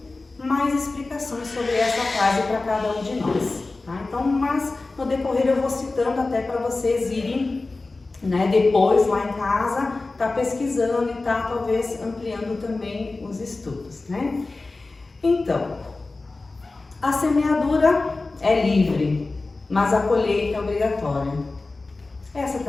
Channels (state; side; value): quieter; right; 3.4 dB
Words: mais explicações sobre essa frase para cada um de nós, Então, mas no decorrer eu vou citando até para vocês irem, depois lá em casa, pesquisando e talvez ampliando também os estudos, Então, a semeadura é livre, mas a colheita é obrigatória. Essa